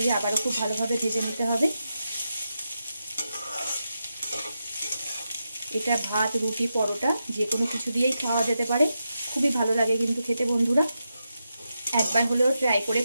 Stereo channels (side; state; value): both; inverted; correlation -0.87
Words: আবারও খুব ভালোভাবে ভেজে নিতে হবে। এটা ভাত, রুটি, পরোটা যে কোনো কিছু দিয়েই খাওয়া যেতে পারে, খুবই ভালো লাগে কিন্তু খেতে। বন্ধুরা একবার হলেও ট্রাই করে